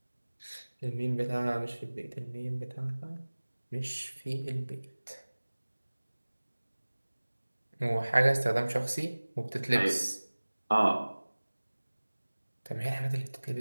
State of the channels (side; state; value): both; inverted; correlation -1.00